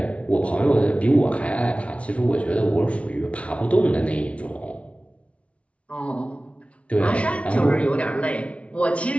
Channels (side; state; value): right; late; 0.062 ms